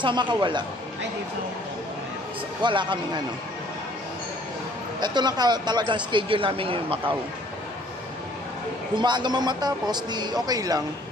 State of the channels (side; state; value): both; normal; correlation 0.58